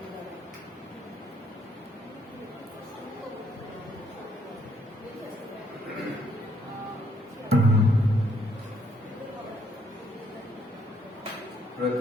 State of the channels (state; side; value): normal; both; correlation 0.69